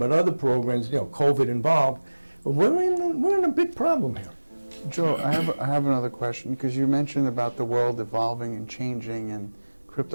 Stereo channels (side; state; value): both; inverted; correlation -1.00